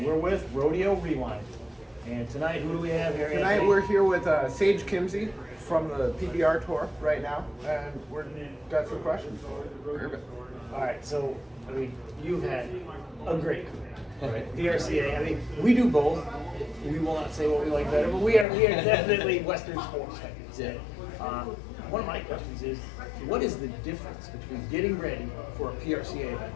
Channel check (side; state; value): right; drops out; at 18.4 s